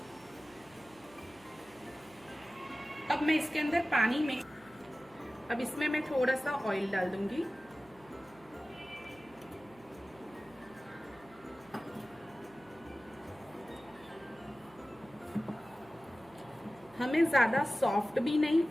अब मैं इसके अंदर पानी में अब इसमें मैं थोड़ा सा ऑयल डाल दूंगी। हमें ज्यादा सॉफ्ट भी नहीं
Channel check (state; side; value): noise; right; hum, 26 dB below the sound